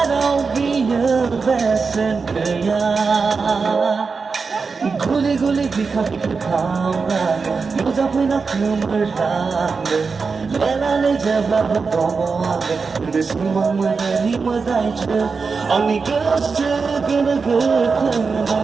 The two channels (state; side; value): quieter; left; 4.8 dB